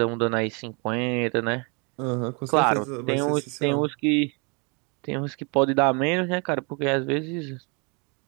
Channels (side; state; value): left; quieter; 33.1 dB